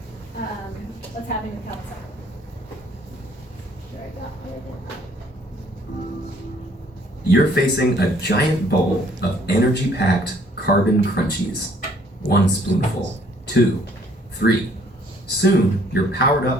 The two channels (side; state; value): both; normal; correlation 0.61